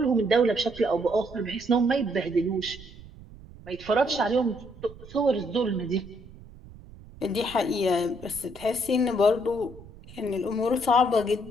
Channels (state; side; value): noise; right; rumble, 19 dB below the sound